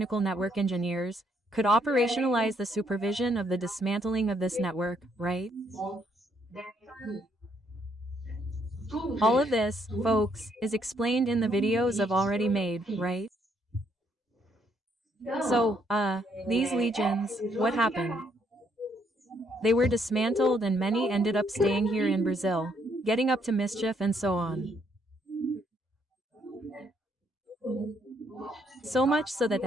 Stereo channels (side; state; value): both; normal; correlation 0.71